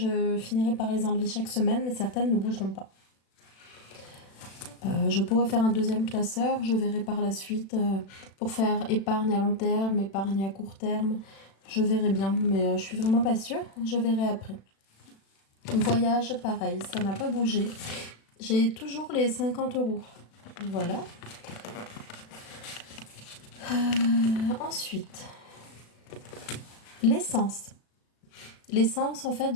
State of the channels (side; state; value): right; late; 36 ms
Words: finirai par les enlever chaque semaine, mais certaines ne bougeront pas. Je pourrais faire un deuxième classeur, je verrai par la suite pour faire épargne à long terme, épargne à court terme. Je verrai bien, mais je suis vraiment pas sûre. Je verrai après. Voyage, pareil, ça n'a pas bougé. J'ai toujours les 50 €. Voilà. Ensuite, l'essence. L'essence, en fait,